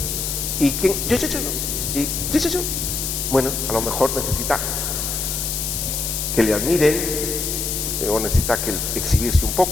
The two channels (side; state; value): left; noise; hiss, 2 dB below the sound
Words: ¿Y quién? Yo. ¿Y yo? Bueno, a lo mejor necesita que le admiren, o necesita que exhibirse un